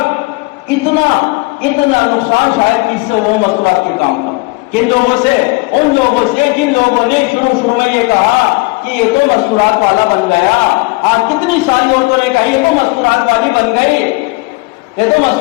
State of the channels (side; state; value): right; quieter; 25.1 dB